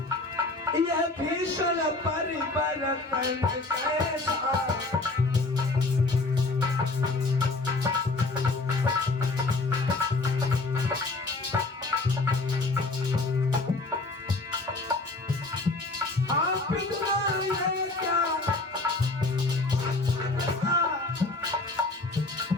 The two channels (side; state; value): right; quieter; 3.3 dB